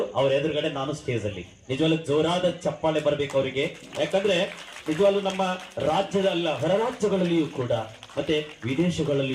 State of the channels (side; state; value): both; identical; correlation 1.00